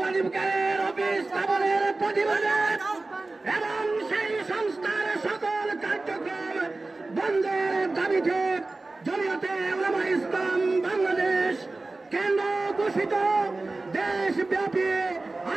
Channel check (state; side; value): quieter; left; 3.3 dB